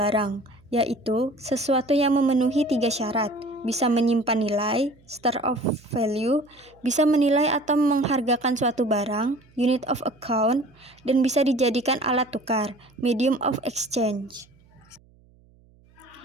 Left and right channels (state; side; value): noise; right; hum, 30 dB below the sound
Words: yaitu sesuatu yang memenuhi 3 syarat. Bisa menyimpan nilai, store of value, bisa menilai atau menghargakan suatu barang, unit of account, dan bisa dijadikan alat tukar, medium of exchange.